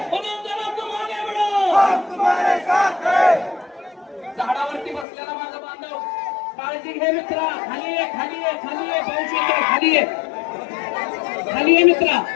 मनोज दादा तुम आगे बढ़ो. झाडावरती बसलेला माझा बांधव काळजी घे मित्रा. खाली ये खाली ये खाली ये. पाऊस येतो. खाली ये खाली ये मित्रा.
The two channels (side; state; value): right; drops out; at 5.1 s